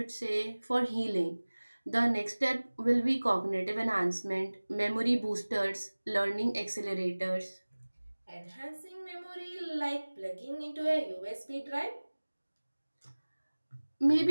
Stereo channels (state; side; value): inverted; both; correlation -1.00